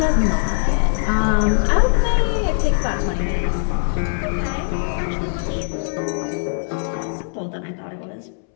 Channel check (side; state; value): right; silent; 65 dB below the other